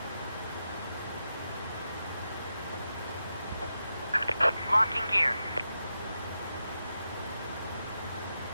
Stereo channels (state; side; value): inverted; both; correlation -0.87